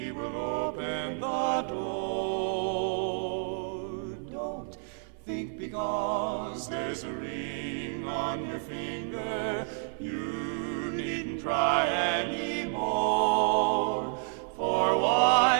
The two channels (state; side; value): silent; left; 58 dB below the other